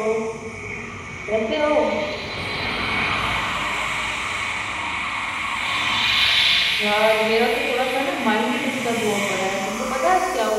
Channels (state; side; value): identical; both; correlation 1.00